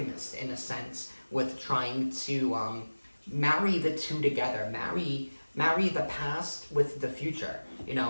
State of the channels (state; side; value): inverted; both; correlation -1.00